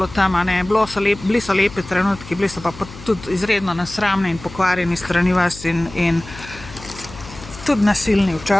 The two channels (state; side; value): noise; left; hum, 16 dB below the sound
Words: tam, a ne. Bili so lepi trenutki, bili so pa tudi izredno nesramni in pokvarjeni strani vas in tudi nasilni